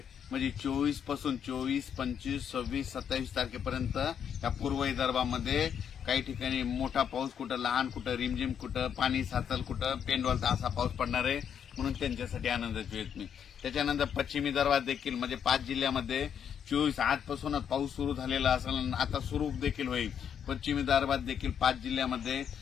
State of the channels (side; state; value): right; quieter; 8.2 dB